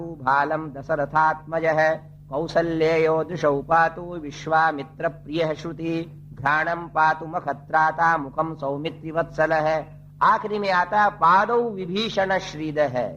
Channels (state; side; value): identical; both; correlation 1.00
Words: भालम दशरथात्मज है, कौसल्यो दृशौ पातु विश्वामित्र प्रिय श्रुति घ्राणम पातु मखत्राता मुखम सौमित्रि वत्सल है। आखिरी में आता पादौ विभीषण श्रीद है,